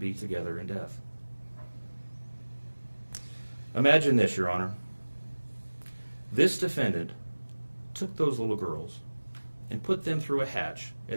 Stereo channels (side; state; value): both; inverted; correlation -1.00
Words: together in death. Imagine this, Your Honor. This defendant took those little girls and put them through a hatch